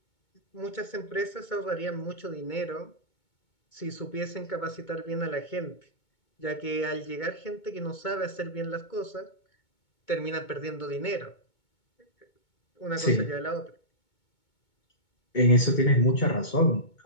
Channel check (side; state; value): right; late; 2.2 ms